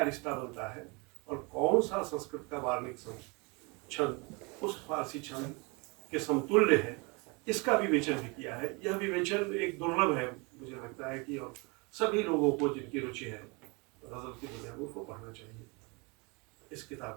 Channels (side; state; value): left; quieter; 29.2 dB